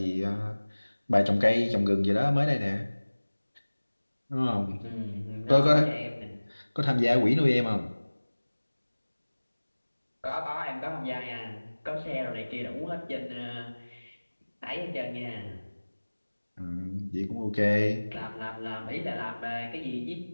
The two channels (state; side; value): inverted; both; correlation -1.00